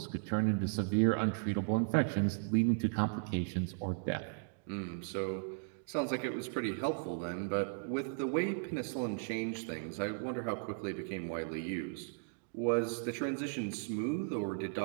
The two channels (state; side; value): silent; left; digital silence